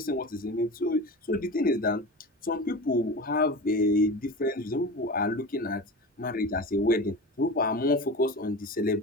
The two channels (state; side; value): normal; both; correlation 0.30